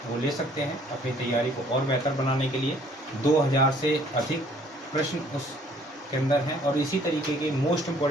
वो ले सकते हैं अपनी तैयारी को और बेहतर बनाने के लिए। 2000 से अधिक प्रश्न उसके अंदर हैं, और इसी तरीके के मोस्ट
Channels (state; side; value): normal; both; correlation 0.59